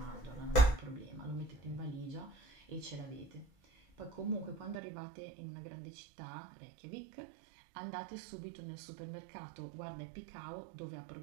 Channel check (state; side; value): drops out; left; at 4.8 s